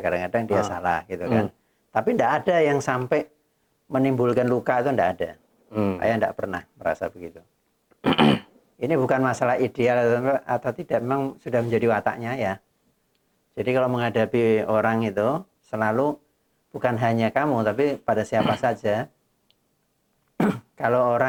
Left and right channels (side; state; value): both; identical; correlation 1.00